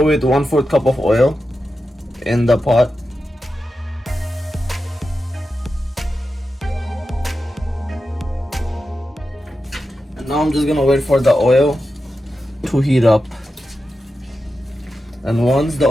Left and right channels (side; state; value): both; normal; correlation 0.90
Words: with 1/4 cup of oil in the pot. And now I'm just gonna wait for the oil to heat up. And once the